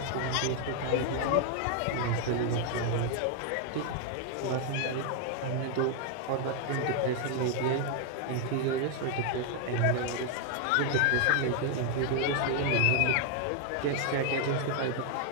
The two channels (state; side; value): different; both; correlation 0.00